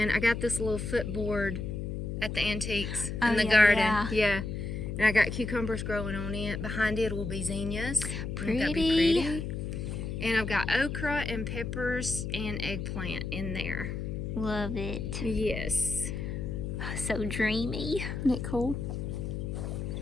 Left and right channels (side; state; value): left; noise; hum, 4 dB below the sound